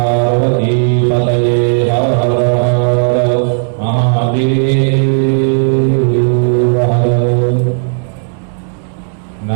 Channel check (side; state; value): left; silent; digital silence